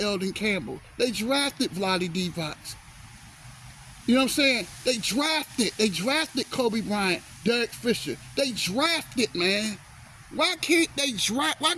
Eldon Campbell. They drafted Vlade Divac. You know what I'm saying? They drafted Kobe Bryant, Derek Fisher. They drafted, man. Why can't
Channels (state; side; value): identical; both; correlation 1.00